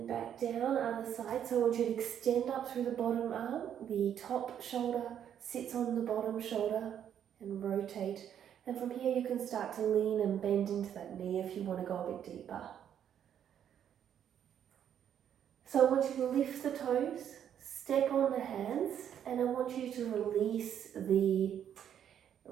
back down, other side. So I want you to extend up through the bottom arm. The top shoulder sits on the bottom shoulder and rotate. And from here you can start to lean and bend into that knee if you want to go a bit deeper. So I want you to lift the toes, step on the hands, and I want you to release the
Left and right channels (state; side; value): quieter; left; 9.4 dB